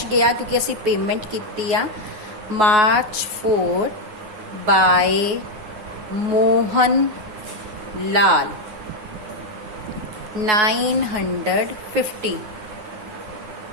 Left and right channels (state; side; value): late; left; 9.4 ms